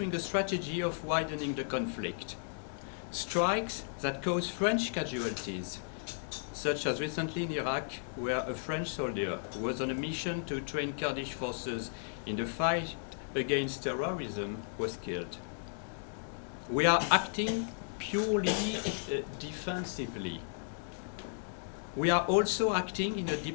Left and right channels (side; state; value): right; silent; digital silence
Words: a strategy of widening the conflict. Strikes that cause French casualties, such as recently in Iraq, where a French soldier who was on a mission to train Kurdish forces in the fight against terrorism was killed. We are acting purely defensively. We are also acting in a